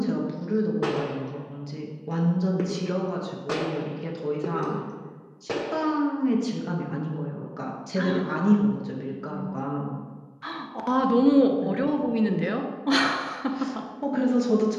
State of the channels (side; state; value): both; identical; correlation 1.00